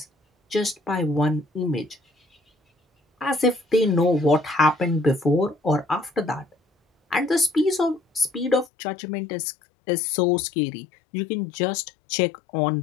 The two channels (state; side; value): drops out; right; at 8.7 s